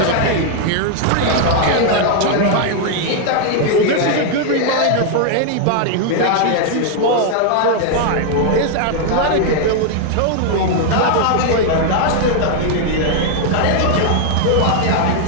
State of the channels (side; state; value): both; different; correlation 0.00